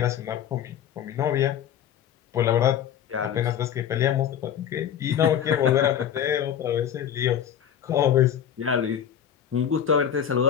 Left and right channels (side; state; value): right; quieter; 9.2 dB